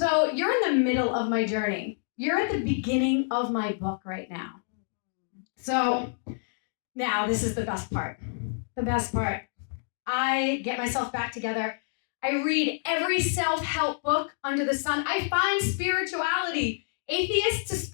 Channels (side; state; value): right; silent; digital silence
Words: you're in the middle of my journey. You're at the beginning of my book right now. So now this is the best part. The best part. I get myself back together. I read every self-help book under the sun. I find spirituality. Atheist to